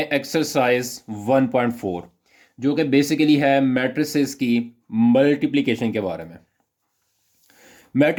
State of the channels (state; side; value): identical; both; correlation 1.00